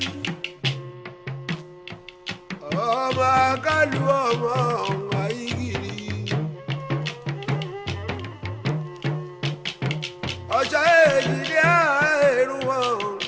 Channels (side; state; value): both; identical; correlation 1.00